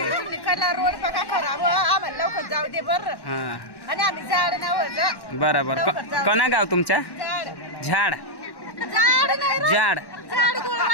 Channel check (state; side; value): late; right; 1.1 ms